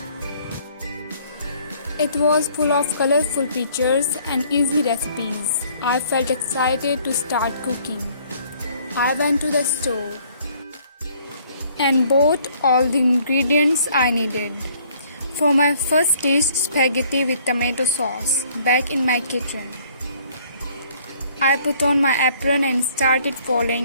It was full of colorful pictures and easy recipes. I felt excited to start cooking. I went to the store and bought all the ingredients I needed for my first dish, spaghetti with tomato sauce, back in my kitchen. I put on my apron and started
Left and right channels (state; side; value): inverted; both; correlation -0.60